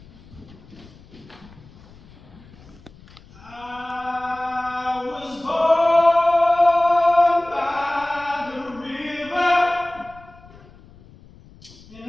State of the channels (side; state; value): left; noise; rumble, 23 dB below the sound